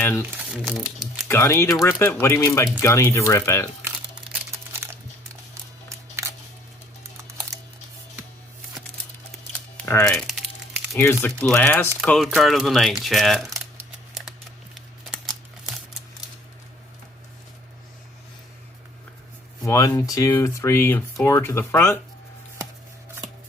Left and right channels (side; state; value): both; normal; correlation 0.58